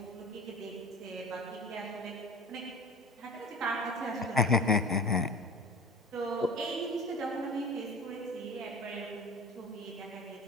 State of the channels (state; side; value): normal; both; correlation 0.36